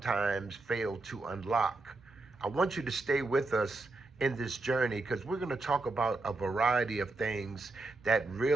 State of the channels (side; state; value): left; quieter; 3.2 dB